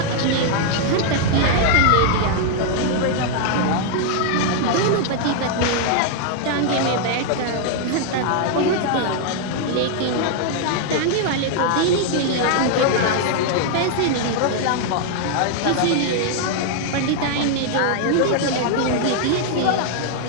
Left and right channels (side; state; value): both; different; correlation 0.00